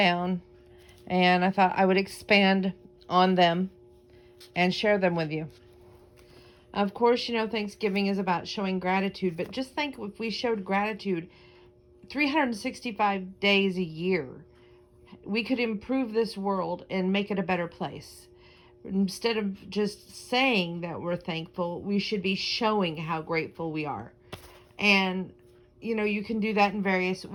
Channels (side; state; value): both; identical; correlation 1.00